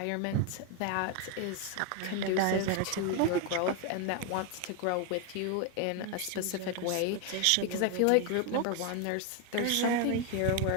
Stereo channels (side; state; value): both; different; correlation 0.01